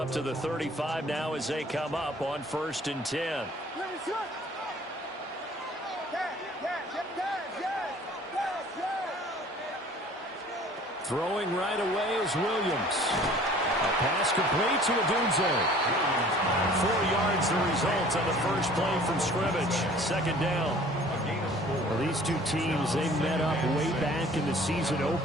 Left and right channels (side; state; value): both; normal; correlation 0.50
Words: to the 35 now as they come up on 1st and 10. Throwing right away is Williams. A pass complete to Odunze. 4 yards the result on the first play from scrimmage. 2nd down. Well, these two teams, they met up way back in the season